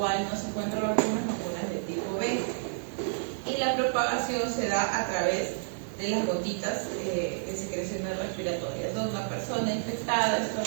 no se encuentran vacunas de tipo B. Y la propagación se da a través de las gotitas de secreciones respiratorias. Donde una persona infectada,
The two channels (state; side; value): silent; left; 58 dB below the other